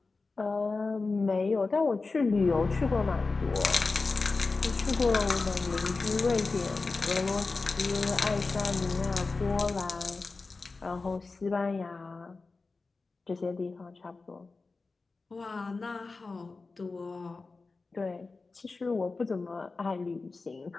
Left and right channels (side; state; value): right; quieter; 3.9 dB